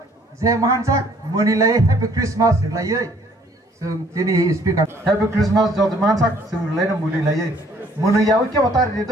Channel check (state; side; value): normal; both; correlation 0.60